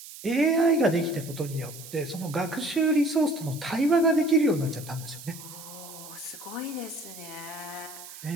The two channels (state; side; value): noise; right; hiss, 15 dB below the sound